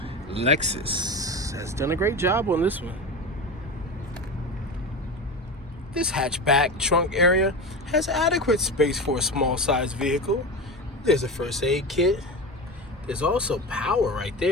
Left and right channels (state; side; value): normal; both; correlation 0.25